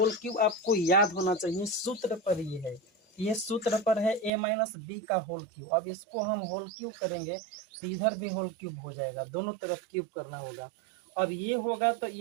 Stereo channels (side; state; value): left; drops out; at 4.3 s